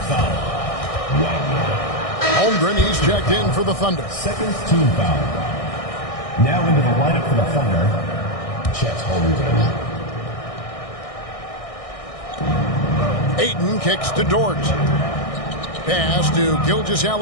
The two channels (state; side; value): late; right; 1.6 ms